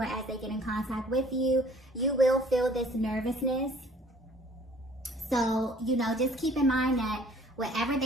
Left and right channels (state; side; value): normal; both; correlation 0.55